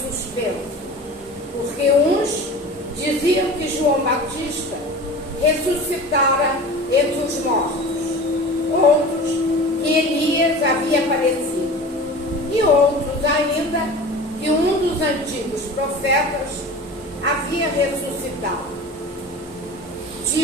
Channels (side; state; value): both; normal; correlation 0.36